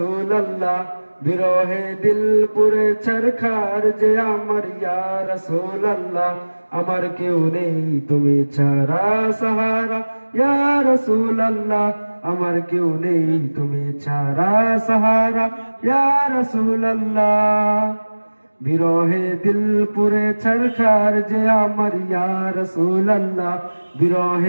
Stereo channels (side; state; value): both; inverted; correlation -1.00